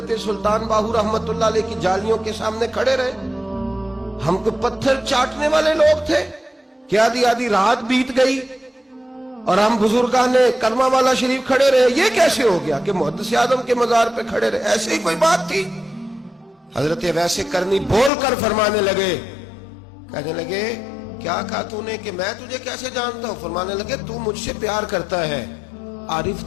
سلطان باہو رحمت اللہ علیہ کی جالیوں کے سامنے کھڑے رہے. ہم کو پتھر چاٹنے والے لوگ تھے کہ آدھی رات بیت گئی اور ہم بزرگان کرما والا شریف کھڑے رہے. یہ کیسے ہو گیا کہ محدث اعظم کے مزار پہ کھڑے رہے؟ ایسے ہی کوئی بات تھی؟ حضرت اویس کرنی بول کر فرمانے لگے، کہنے لگے کیا کہا تو نے کہ میں تجھے کیسے جانتا ہوں؟ فرمانے لگے تو مجھ سے پیار کرتا ہے. عارف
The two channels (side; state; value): right; drops out; at 18.1 s